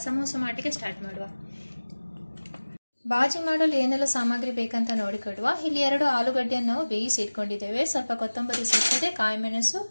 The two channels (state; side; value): inverted; both; correlation -1.00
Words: ಸಮೋಸ ಮಾಡಲಿಕ್ಕೆ ಸ್ಟಾರ್ಟ್ ಮಾಡುವ. ಬಾಜಿ ಮಾಡಲು ಏನೆಲ್ಲ ಸಾಮಗ್ರಿ ಬೇಕಂತ ನೋಡಿಕೊಡುವ. ಇಲ್ಲಿ 2 ಆಲೂಗಡ್ಡೆಯನ್ನು ನಾವು ಬೇಯಿಸಿ ಇಟ್ಕೊಂಡಿದ್ದೇವೆ. ಸ್ವಲ್ಪ ಕೊತ್ತಂಬರಿ ಸೊಪ್ಪಿದೆ, ಕಾಯಿ ಮೆಣಸು,